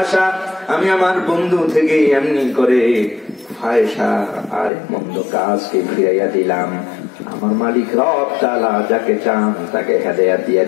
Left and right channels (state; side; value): drops out; right; at 4.7 s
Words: আমি আমার বন্ধু থেকে এমনি করে ফায়সা আর মন্দ কাজকে ফিরাইয়া দিলাম। আমার মালিক রব তাআলা যাকে চান তাকে হেদায়েত দিয়ে